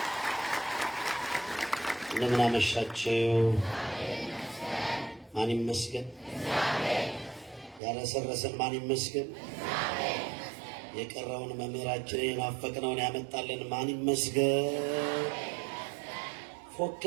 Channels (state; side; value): drops out; left; at 7.8 s